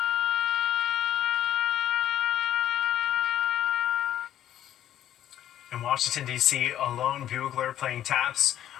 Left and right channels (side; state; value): right; quieter; 11.5 dB